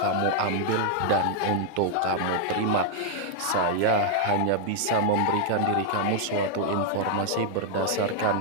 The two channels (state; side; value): different; both; correlation 0.00